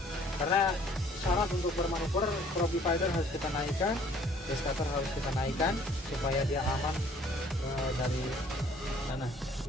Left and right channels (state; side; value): normal; both; correlation 0.57